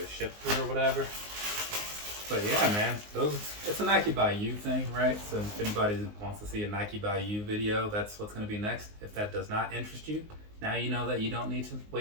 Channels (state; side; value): late; left; 19 ms